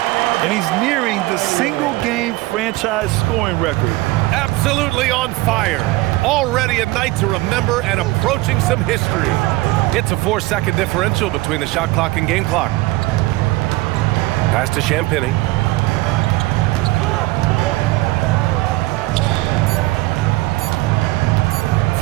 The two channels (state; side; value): quieter; left; 20.1 dB